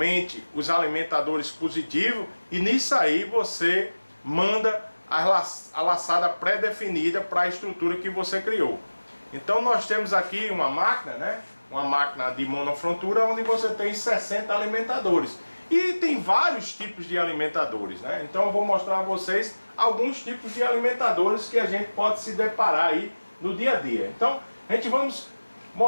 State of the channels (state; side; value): inverted; both; correlation -1.00